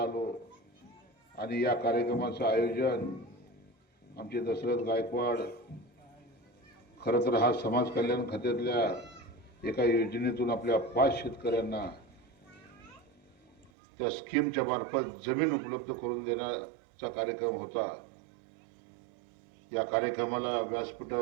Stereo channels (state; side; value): drops out; left; at 13.7 s